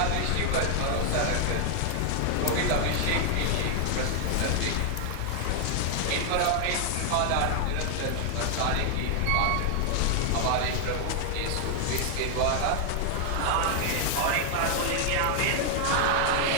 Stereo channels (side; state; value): both; different; correlation 0.00